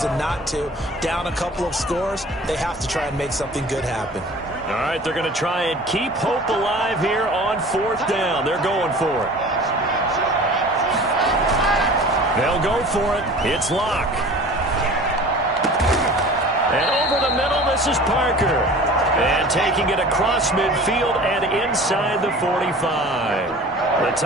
not to. Down a couple of scores, they have to try and make something good happen. All right, they're going to try and keep hope alive here on 4th down. They're going for it. They'll go for it. It's Locke. And over the middle, this is Parker. And taking it across midfield and inside the 45. The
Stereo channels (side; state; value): both; normal; correlation 0.42